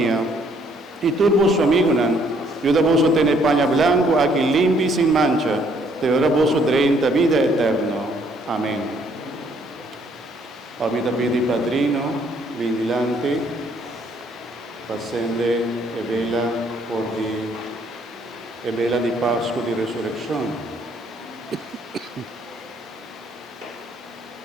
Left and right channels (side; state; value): both; normal; correlation 0.66